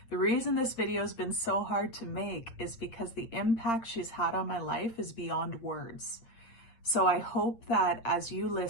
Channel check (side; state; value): right; late; 8.7 ms